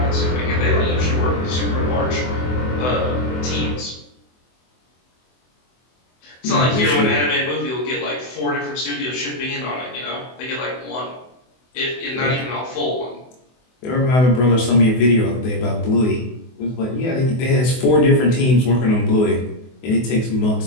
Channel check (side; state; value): right; late; 24 ms